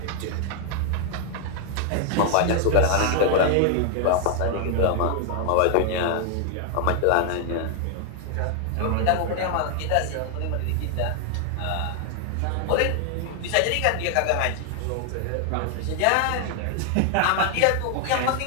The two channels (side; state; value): both; different; correlation 0.00